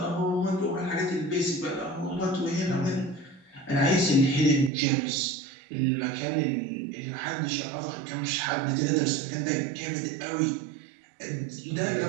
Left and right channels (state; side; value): drops out; left; at 4.7 s